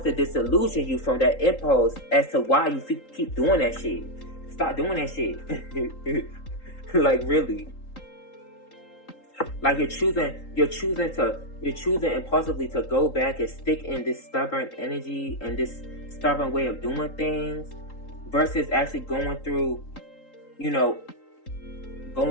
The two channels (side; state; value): right; late; 3.8 ms